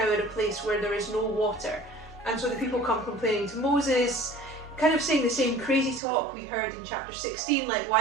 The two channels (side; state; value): left; drops out; at 6.0 s